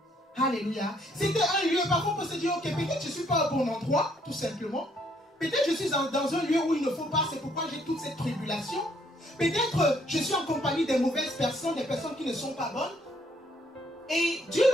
Alléluia. C'était un lieu, parfois on peut se dire, ok, peut-être je ne suis pas au bon endroit, tout simplement. Peut-être je suis dans un lieu où il ne faut pas, c'est pourquoi j'ai toute cette tribulation. Peut-être je suis en compagnie des mauvaises personnes, des personnes qui ne sont pas bonnes. Et Dieu,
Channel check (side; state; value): both; normal; correlation 0.68